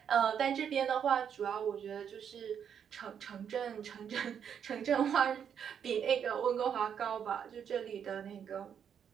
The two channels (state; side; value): quieter; left; 8.1 dB